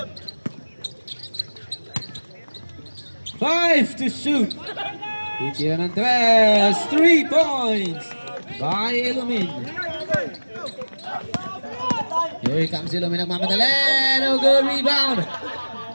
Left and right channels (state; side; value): inverted; both; correlation -1.00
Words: 5 to shoot. Titira ng tres. 3 points by Ilomin. Here comes Ilomin. Nagmamadali. No good. Rebound.